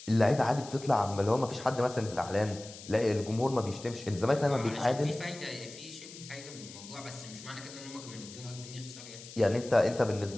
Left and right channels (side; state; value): left; noise; hiss, 15 dB below the sound